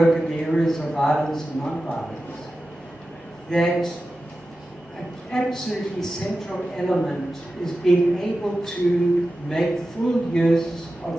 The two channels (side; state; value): both; normal; correlation 0.93